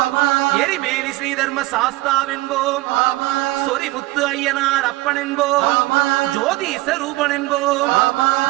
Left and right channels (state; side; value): quieter; left; 19.4 dB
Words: எரிமேலி ஸ்ரீதர்ம சாஸ்தாவென்போம், சொரிமுத்து ஐயனார் அப்பன் என்போம், ஜோதிச ரூபன் என்போம்,